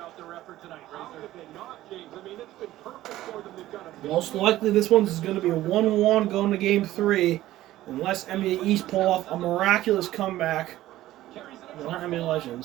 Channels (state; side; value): quieter; left; 15.0 dB